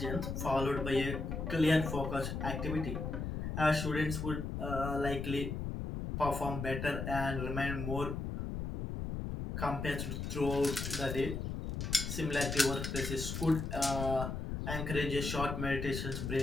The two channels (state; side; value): noise; left; rumble, 4 dB below the sound